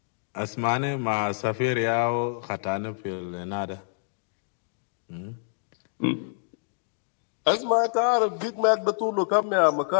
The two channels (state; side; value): silent; right; digital silence